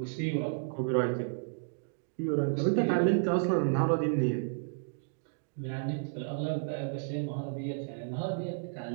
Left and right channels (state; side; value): silent; left; digital silence